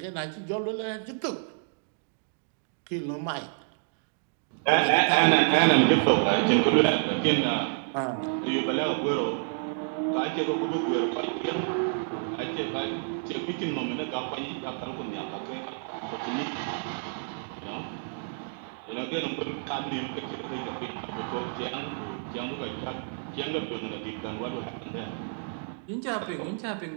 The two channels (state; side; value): silent; left; digital silence